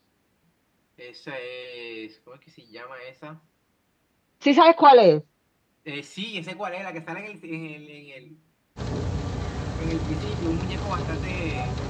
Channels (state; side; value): identical; both; correlation 1.00